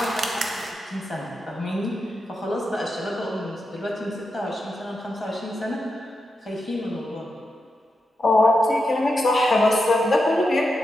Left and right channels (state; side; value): normal; both; correlation 0.87